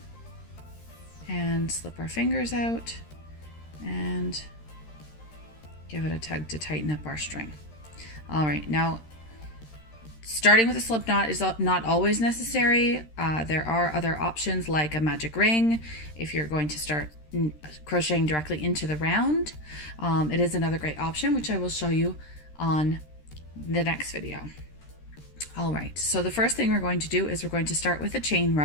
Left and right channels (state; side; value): late; right; 13 ms